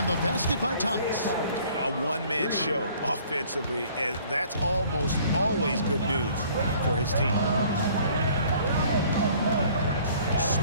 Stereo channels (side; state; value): both; inverted; correlation -0.55